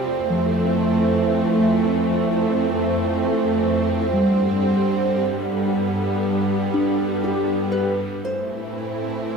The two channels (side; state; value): both; normal; correlation 0.52